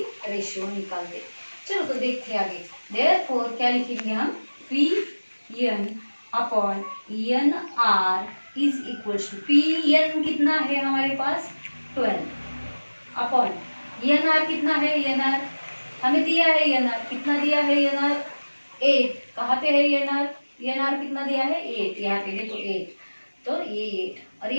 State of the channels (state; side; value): inverted; both; correlation -1.00